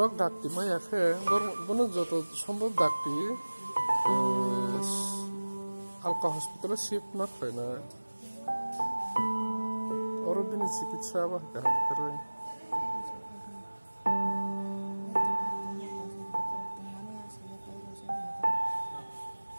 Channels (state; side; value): inverted; both; correlation -1.00